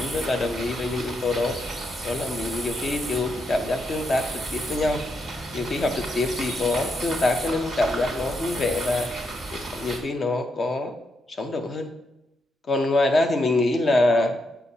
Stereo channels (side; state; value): both; normal; correlation 0.81